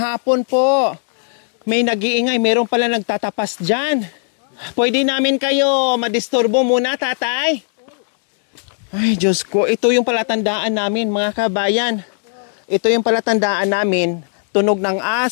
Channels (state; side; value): silent; right; digital silence